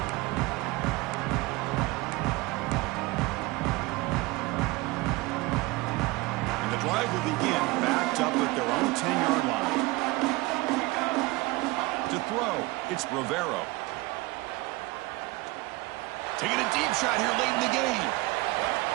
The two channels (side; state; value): left; quieter; 21.9 dB